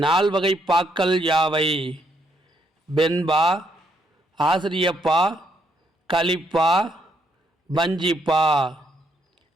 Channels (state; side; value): normal; both; correlation 0.74